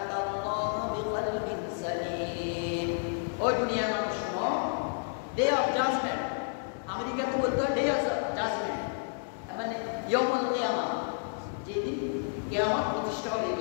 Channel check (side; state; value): right; silent; digital silence